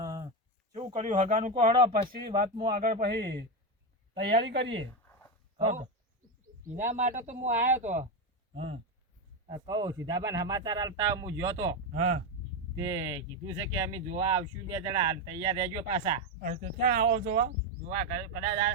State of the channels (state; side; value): normal; both; correlation 0.10